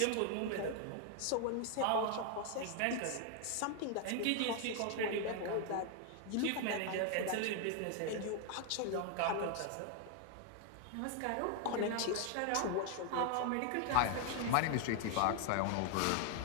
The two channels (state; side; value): different; both; correlation 0.00